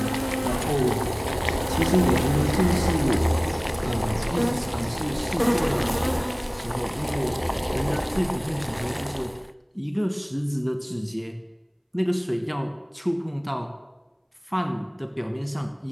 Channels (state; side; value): identical; both; correlation 1.00